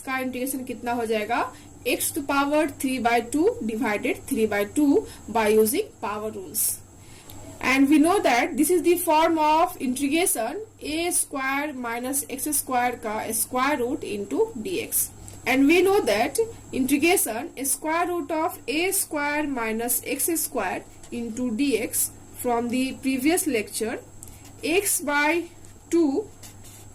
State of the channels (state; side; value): identical; both; correlation 1.00